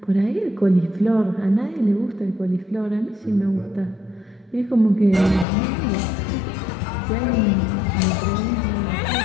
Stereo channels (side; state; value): right; drops out; at 5.5 s